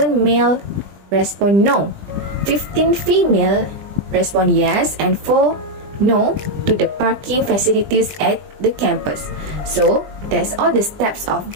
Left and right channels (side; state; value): left; late; 20 ms